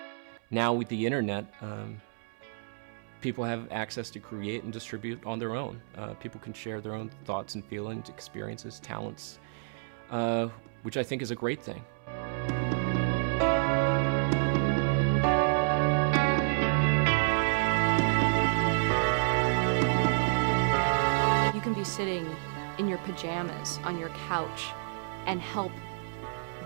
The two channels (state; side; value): silent; left; 58 dB below the other